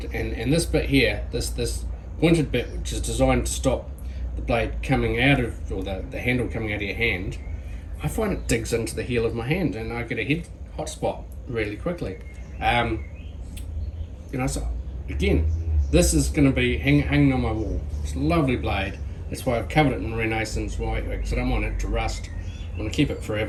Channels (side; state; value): both; identical; correlation 1.00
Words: and this bit here, this pointed bit, which is designed to stop the blade coming out of, or the handle coming out of your hand, I find it digs into the heel of my hand, and I get a head hot spot really quickly. So again, this is going to be hanging on my wall. It's a lovely blade. That's why I've covered it in Renaissance white, because I don't want it to rust. I want to keep it